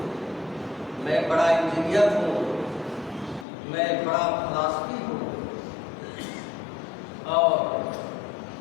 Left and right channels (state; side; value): drops out; right; at 3.5 s